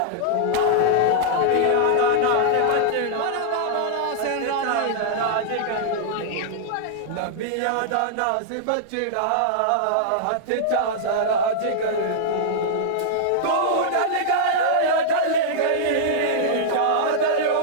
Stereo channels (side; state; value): both; different; correlation -0.02